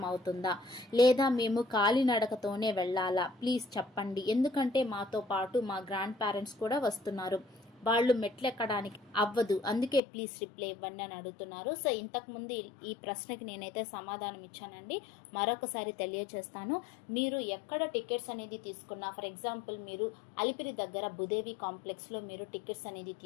అవుతుందా లేదా మేము కాలినడకతోనే వెళ్ళాలా? ప్లీజ్ చెప్పండి. ఎందుకంటే మాతో పాటు మా గ్రాండ్ పేరెంట్స్ కూడా వస్తున్నారు, వాళ్ళు మెట్లు ఎక్కడానికి అవ్వదు, అందుకే ప్లీజ్ రిప్లై ఇవ్వండి అని అడుగుతున్నారు. సో ఇంతకుముందు ఈ ప్రశ్నకి నేనైతే సమాధానం ఇచ్చానండి, మరొకసారి తెలియజేస్తాను. మీరు ఎక్కడ టికెట్స్ అనేది తీసుకున్నా, ఫర్ ఎగ్జాంపుల్ మీరు అలిపిరి దగ్గర భూదేవి కాంప్లెక్స్లో మీరు టికెట్స్ అనేది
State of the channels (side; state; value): right; drops out; at 10.0 s